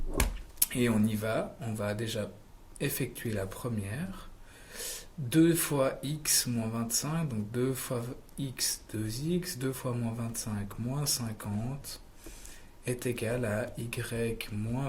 Et on y va. On va déjà effectuer la première. 2 fois x moins 25, donc 2 fois x 2x, 2 fois moins 25 moins 50 est égal à y moins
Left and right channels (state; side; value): identical; both; correlation 1.00